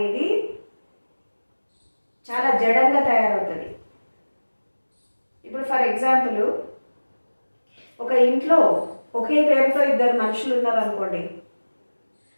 చాలా జడంగా తయారవుతుంది. ఇప్పుడు ఫర్ ఎగ్జాంపుల్, ఒక ఇంట్లో ఒకే పేరుతో ఇద్దరు మనుషులు ఉన్నారనుకోండి,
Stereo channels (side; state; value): both; inverted; correlation -1.00